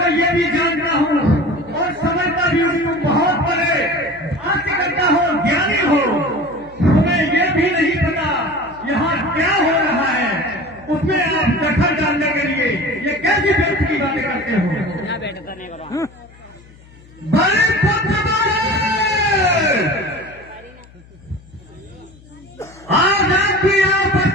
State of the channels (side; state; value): left; noise; hum, 24 dB below the sound